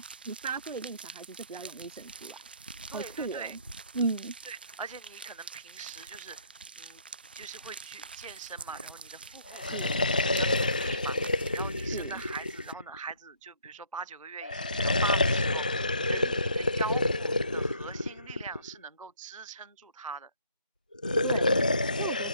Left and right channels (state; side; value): inverted; both; correlation -0.63